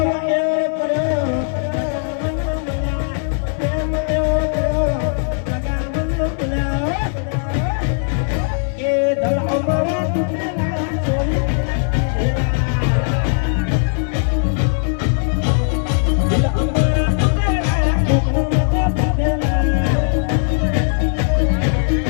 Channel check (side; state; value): right; silent; digital silence